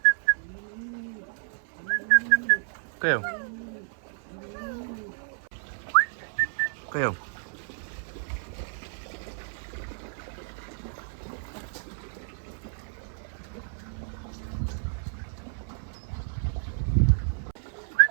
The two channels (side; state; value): left; silent; 57 dB below the other